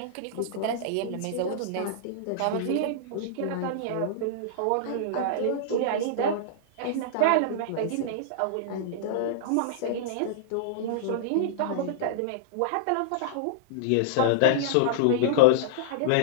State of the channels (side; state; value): both; different; correlation -0.02